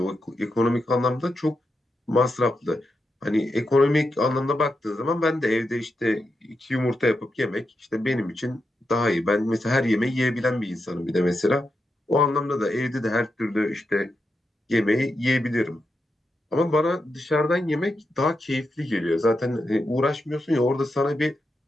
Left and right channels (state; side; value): normal; both; correlation 0.86